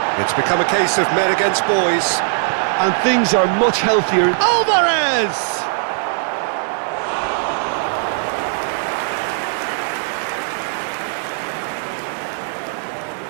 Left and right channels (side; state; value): left; silent; digital silence